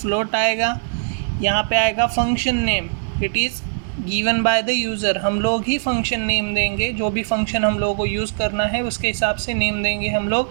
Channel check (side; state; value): left; silent; 65 dB below the other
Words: आएगा। यहाँ पे आएगा function name, it is given by the user. हम लोग ही फंक्शन नेम देंगे, जो भी फंक्शन हम लोगों को यूज़ करना है उसके हिसाब से नेम देंगे हम